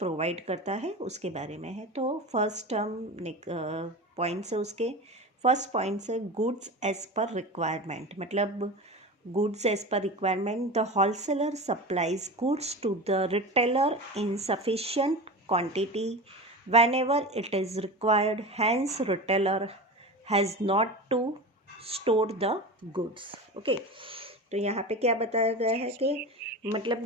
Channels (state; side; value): normal; both; correlation 0.28